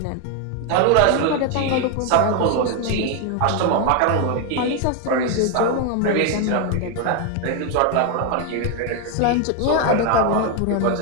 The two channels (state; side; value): different; both; correlation 0.01